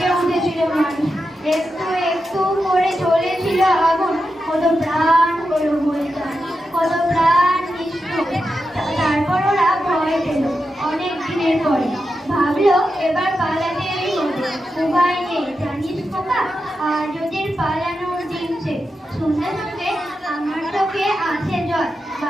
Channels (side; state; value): both; normal; correlation 0.88